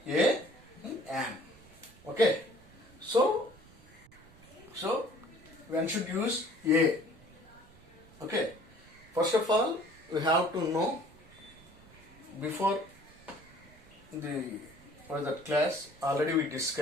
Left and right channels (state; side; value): noise; right; rumble, 24 dB below the sound